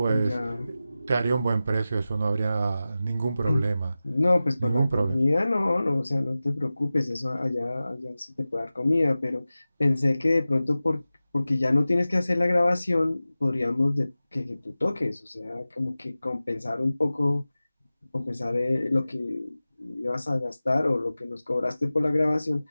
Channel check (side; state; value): both; inverted; correlation -0.95